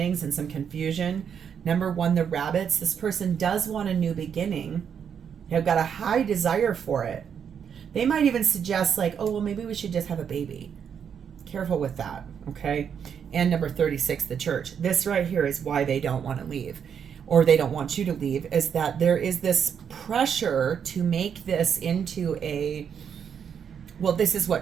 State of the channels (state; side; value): quieter; left; 7.6 dB